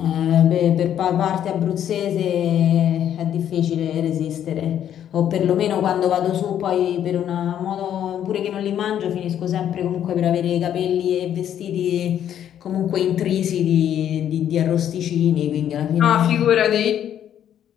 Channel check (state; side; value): quieter; right; 10.2 dB